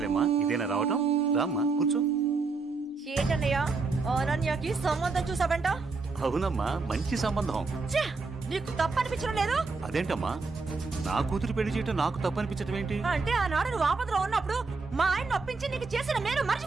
ఇదేనా రావటం? రామ్మా కూర్చో. ఏంటన్నయ్య అనన్యకి సంబంధం చూసావంట? అవునమ్మా, మంచి సంబంధం. నీకు తప్పనిపించడం లేదు? అదేంటమ్మా, నా కూతురు పెళ్లి చేయటం నాకు తప్పనిపించటం ఏంటి? అంటే ఆనాడు నువ్వు ఆపదలో ఉన్నప్పుడు మా ఆయన ఒప్పించి నీకు చేసిన మేలు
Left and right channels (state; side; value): quieter; left; 4.2 dB